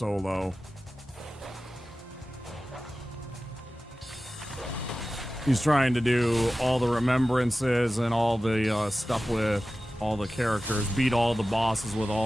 He's trying to do all the remembrances and all the stuff with all the characters, beat all the bosses with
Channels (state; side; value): normal; both; correlation 0.95